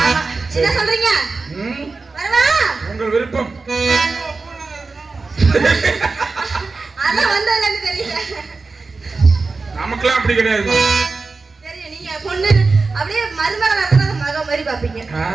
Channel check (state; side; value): quieter; left; 4.0 dB